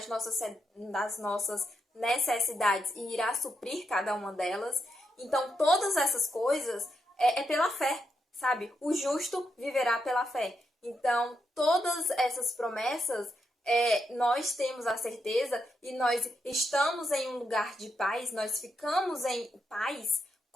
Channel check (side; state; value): both; normal; correlation 0.82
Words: nossas necessidades e irá suprir cada uma delas. Então, todas essas coisas é pela fé, sabe? O justo viverá pela fé. Então, todas essas promessas, nós temos a certeza e nós estamos em um lugar de paz, nós ficamos em paz